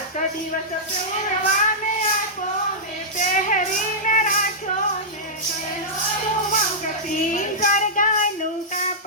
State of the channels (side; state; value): both; normal; correlation -0.12